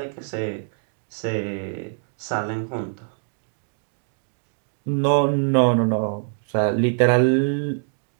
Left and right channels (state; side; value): silent; left; 62 dB below the other